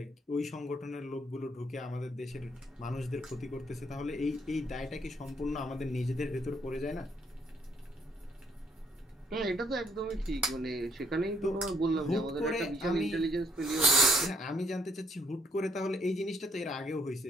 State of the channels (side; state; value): both; normal; correlation 0.69